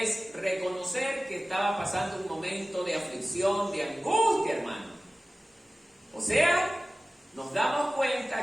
reconocer que estaba pasando un momento de aflicción, de angustia, hermano. O sea, nos damos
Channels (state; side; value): normal; both; correlation 0.97